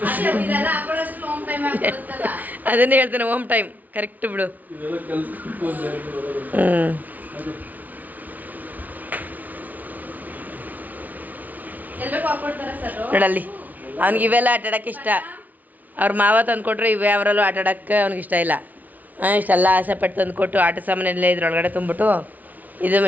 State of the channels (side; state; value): left; late; 0.077 ms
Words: ಅದನ್ನೇ ಹೇಳ್ತೇನೆ, ಹೋಮ್ ಟೈಮ್ ಕರೆಕ್ಟ್ ಬಿಡು. ನೋಡಲ್ಲಿ ಅವ್ನಿಗೆ ಇವೆಲ್ಲ ಆಟ ಆಡೋಕ್ಕೆ ಇಷ್ಟ. ಅವ್ರ ಮಾವ ತಂದು ಕೊಟ್ಟರು ಇವೆ ಅವರಲ್ಲೂ ಆಟ ಆಡೋಕ್ಕೆ ಅವ್ನಿಗೆ ಇಷ್ಟ ಇಲ್ಲ. ಇಷ್ಟೆಲ್ಲ ಆಸೆ ಪಟ್ಟು ತಂದು ಕೊಟ್ಟು ಆಟ ಸಾಮಾನೆಲ್ಲ ಇದ್ರೊಳಗಡೆ ತುಂಬಿಟ್ಟು ಇದು